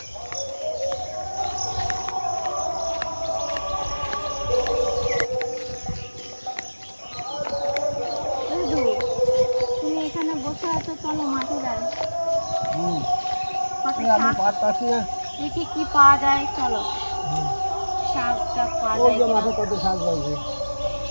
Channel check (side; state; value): both; inverted; correlation -1.00